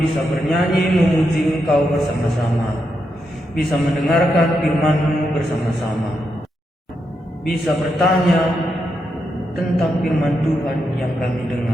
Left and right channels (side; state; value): both; normal; correlation 0.83